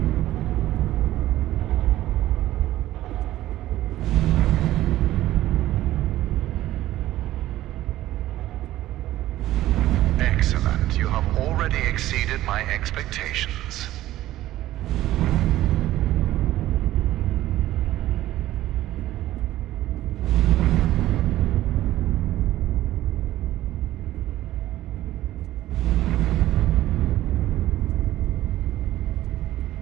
Excellent. You have already exceeded my expectations.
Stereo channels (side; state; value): left; quieter; 14.6 dB